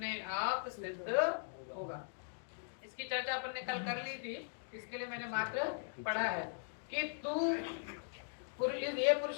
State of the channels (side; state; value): right; silent; digital silence